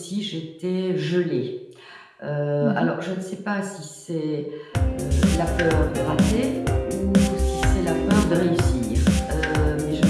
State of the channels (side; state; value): both; identical; correlation 1.00